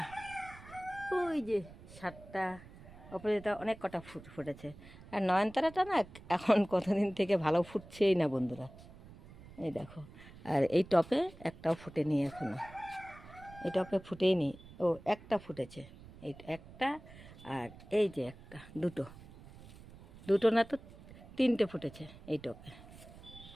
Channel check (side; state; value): right; noise; rumble, 19 dB below the sound